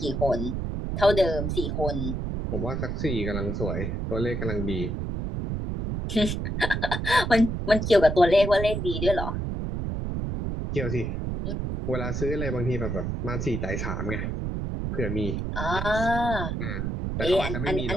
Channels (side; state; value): right; noise; rumble, 2 dB below the sound